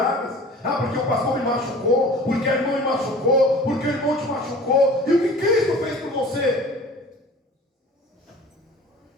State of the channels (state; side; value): normal; both; correlation 0.43